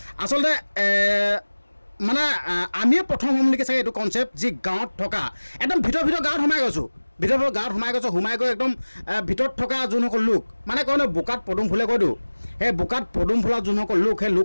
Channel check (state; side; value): inverted; both; correlation -1.00